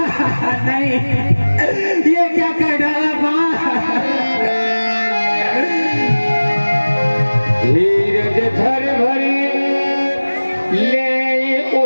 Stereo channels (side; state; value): both; inverted; correlation -1.00